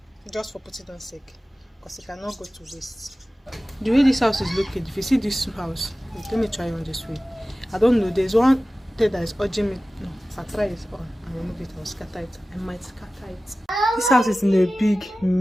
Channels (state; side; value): normal; both; correlation 0.96